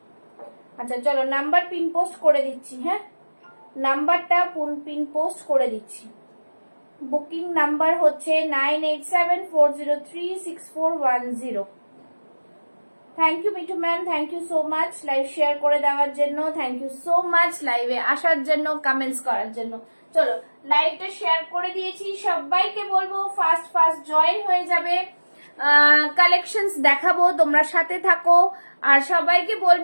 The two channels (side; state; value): both; inverted; correlation -1.00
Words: আচ্ছা চলো নাম্বার পিন পোস্ট করে দিচ্ছি, হ্যাঁ নাম্বারটা পিন পোস্ট করে দিচ্ছি। বুকিং নাম্বার হচ্ছে 9874036410। Thank you Mithu ma'am, thank you so much live share করে দেওয়ার জন্য। থ্যাংক ইউ সো মাচ লাইভে আসার জন্য, কমেন্টস করার জন্য। চলো লাইভটা শেয়ার করে দিয়েছি। সবাইকে বলবো ফাস্ট ফাস্ট জয়েন হয়ে যাবে। কালেকশনস দেখাবো, তোমরা সাথে থাকো। আর সবাইকে